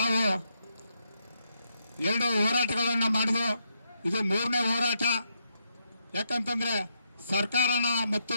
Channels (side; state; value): both; inverted; correlation -0.80